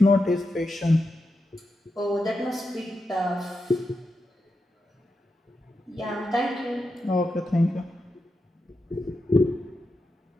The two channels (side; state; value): both; normal; correlation 0.87